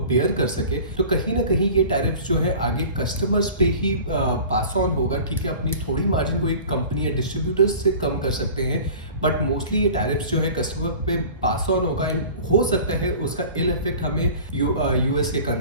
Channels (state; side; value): inverted; both; correlation -0.42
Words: बेयर कर सके। तो कहीं ना कहीं ये टैरिफ जो है आगे कस्टमर्स पे ही पास ऑन होगा। ठीक है, अपनी थोड़ी मार्जिन कोई कंपनी या डिस्ट्रीब्यूटर्स से कम कर सकते हैं, बट मोस्टली ये टैरिफ्स जो है कस्टमर पे पास ऑन होगा एंड हो सकता है उसका इल इफेक्ट हमें यूएस के